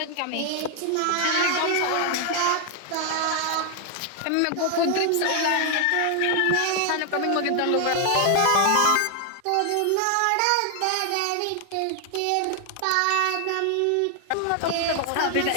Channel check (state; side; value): different; both; correlation 0.00